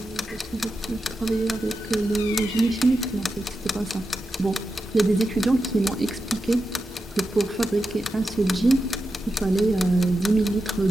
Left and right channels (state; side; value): normal; both; correlation 0.89